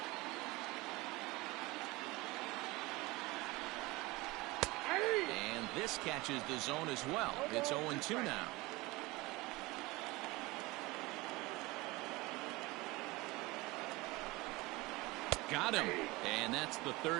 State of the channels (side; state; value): left; quieter; 22.1 dB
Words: And this catches the zone as well. It's 0-2 now. Got him. And that's the